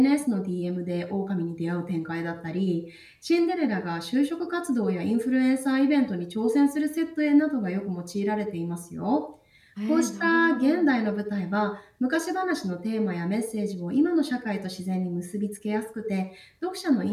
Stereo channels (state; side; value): identical; both; correlation 1.00